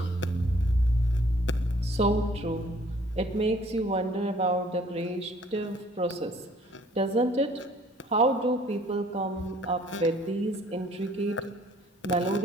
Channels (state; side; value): normal; both; correlation 0.58